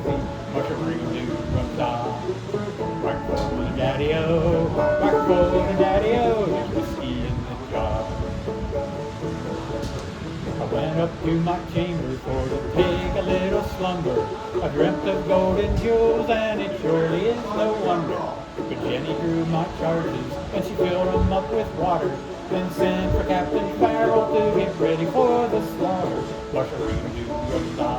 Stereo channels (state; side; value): identical; both; correlation 1.00